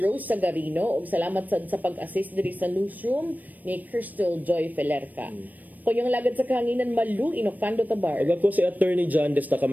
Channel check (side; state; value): left; late; 0.083 ms